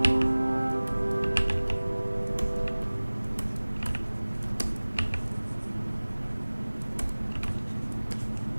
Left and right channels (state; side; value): inverted; both; correlation -1.00